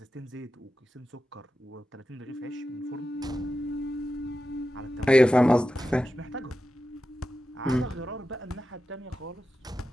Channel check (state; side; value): normal; both; correlation 0.91